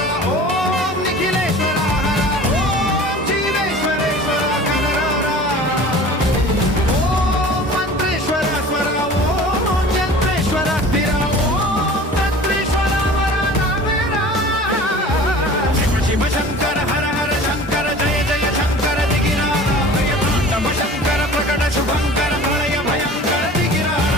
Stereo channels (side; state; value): both; normal; correlation 0.42